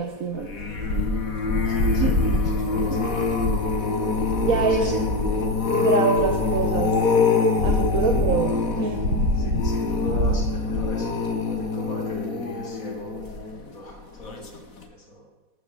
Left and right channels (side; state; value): left; late; 4.1 ms